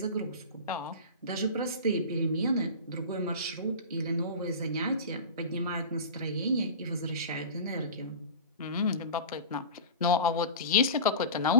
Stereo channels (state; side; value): inverted; both; correlation -0.32